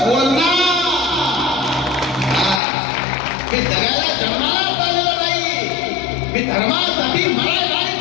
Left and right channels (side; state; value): right; drops out; at 2.6 s